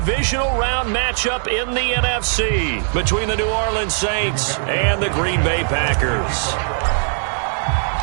round matchup in the NFC between the New Orleans Saints and the Green Bay Packers.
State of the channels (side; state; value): left; silent; 66 dB below the other